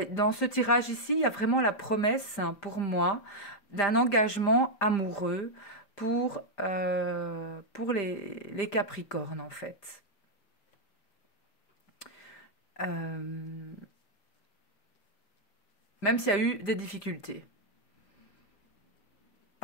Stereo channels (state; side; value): late; right; 5.0 ms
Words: dans ce tirage ici, il y a vraiment la promesse, hein, pour moi, d'un engagement amoureux pour les Capricornes, en fait. Euh, Même s'il y a eu des difficultés